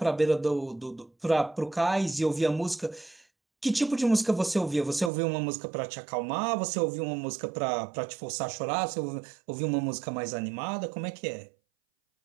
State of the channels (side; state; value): left; drops out; at 5.1 s